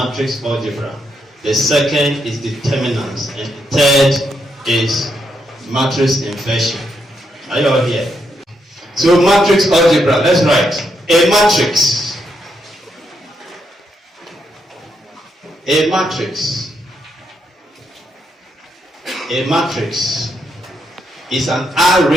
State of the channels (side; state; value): both; normal; correlation 0.79